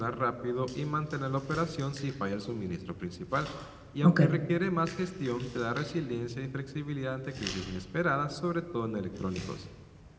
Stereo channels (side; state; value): both; identical; correlation 1.00